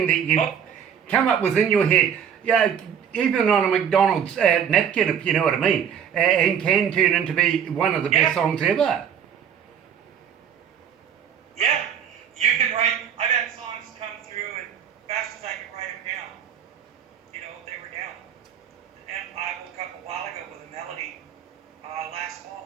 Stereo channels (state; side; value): quieter; left; 8.2 dB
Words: that you come up with in your head, yeah, even on a McDonald's napkin, if you know what I mean, and can turn into be one of the best songs ever. Yeah, you can write. I've had songs come through, and fast as I can write them down, you know, they were down. And I woke up a while ago with a melody last